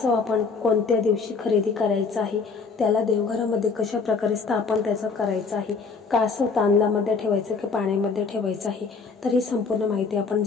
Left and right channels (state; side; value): quieter; right; 4.9 dB